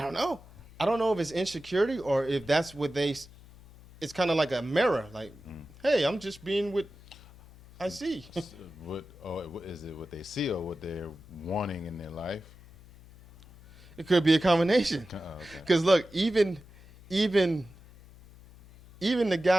don't know. I don't know if it's insecurity or if that's what they. It's kind of like a mirror. Like, hey, I'm just being what I see. Is it what they see or what they're wanting in their life? It could be a combination. Oh, okay. Because look, even the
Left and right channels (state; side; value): noise; left; hum, 22 dB below the sound